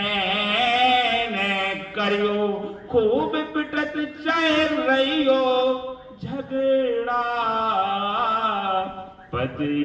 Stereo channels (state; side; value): identical; both; correlation 1.00